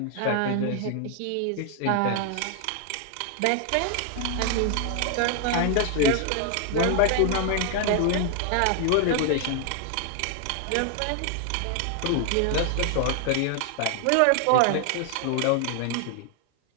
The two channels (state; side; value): different; both; correlation 0.00